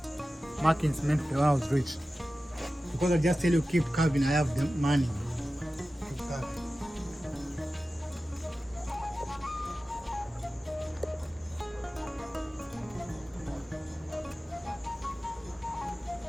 markings meant the owner was rich. Because I just tell you keep carving, I have the money. Keep carving.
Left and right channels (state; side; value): normal; both; correlation 0.95